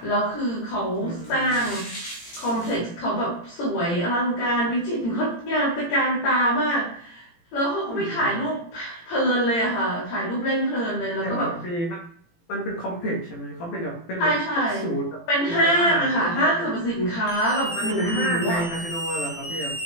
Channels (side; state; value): right; late; 18 ms